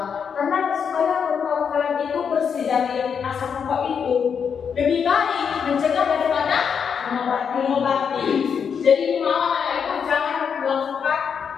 Karena supaya paru-paru kalian itu bersih dari asap rokok itu, lebih baik mencegah daripada mengobati. Jadi mau anak itu jangan melakukan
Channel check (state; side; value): quieter; right; 6.9 dB